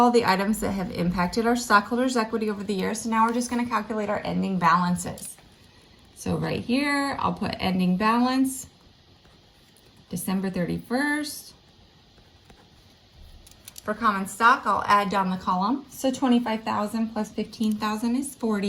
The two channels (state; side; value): identical; both; correlation 1.00